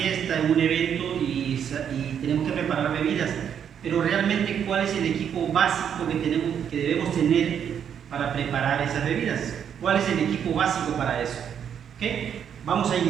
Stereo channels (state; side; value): quieter; left; 8.4 dB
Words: en un evento y tenemos que preparar bebidas. Pero realmente, ¿cuál es el equipo básico que debemos tener para preparar esas bebidas? ¿Cuál es el equipo básico para eso? ¿Okay? Vamos a